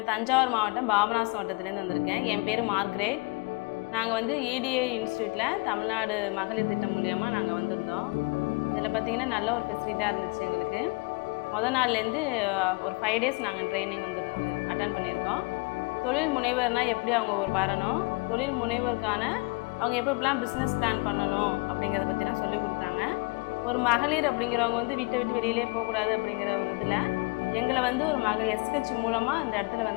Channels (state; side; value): quieter; right; 28.6 dB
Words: தஞ்சாவூர் மாவட்டம் பாபநாசம் வட்டத்திலேருந்து வந்திருக்கேன். என் பேர் மார்க்ரேட். நாங்கள் வந்து EDA இன்ஸ்டியூட்டில் தமிழ்நாடு மகளிர் திட்டம் மூலியமாக நாங்கள் வந்திருந்தோம். இதில் பார்த்திங்கன்னா நல்ல ஒரு ஃபெசிலிட்டாக இருந்துச்சு எங்களுக்கு. நாள்லேருந்து ஒரு 5 டேஸ் நாங்கள் ட்ரைனிங் அட்டன் பண்ணியிருக்கோம். தொழில் முனைவர்னால் எப்படி அவங்க வரணும், தொழில் முனைவருக்கான அவங்க எப்படிலாம் பிஸ்னஸ் பிளான் பண்ணணும் அப்படிங்கிறத பற்றிலாம் சொல்லி கொடுத்தாங்க. ஒரு மகளிர் அப்படிங்கிறவங்க வந்து வீட்டை விட்டு வெளியிலே போகக்கூடாது அப்படிங்கிற ஒரு இதில் எங்களை வந்து ஒரு மகளிர் SH மூலமாக அந்த இடத்துல